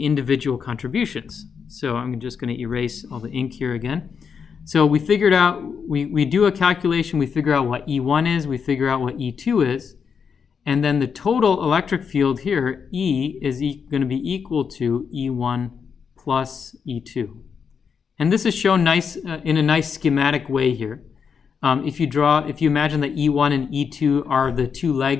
individual contributions. So I'm just going to erase all the ink here again. So we figured out, we do a calculation, we figure out what E1 is, we figure out what E2 is, and then the total electric field here, E, is going to be equal to E1 plus E2. And this is shown nice in a nice schematic way here. If you imagine that E1 and E2 are the two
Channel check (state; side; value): quieter; right; 6.5 dB